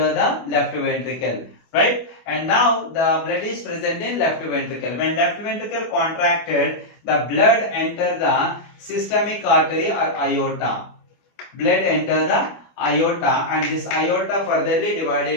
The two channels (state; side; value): late; right; 25 ms